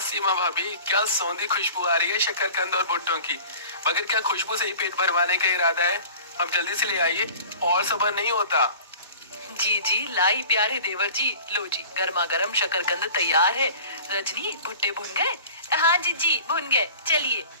भाभी, क्या सौंधी खुशबू आ रही है शकरकंद और भुट्टों की। मगर क्या खुशबू से ही पेट भरवाने का इरादा है? अब जल्दी से ले आइए, और सब्र नहीं होता। जी जी लाई प्यारे देवर जी, लो जी गर्मा गर्म शकरकंद तैयार है। रजनी, भुट्टे भुन गए? हाँ जी भुन गए, चलिए।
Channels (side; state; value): both; inverted; correlation -0.43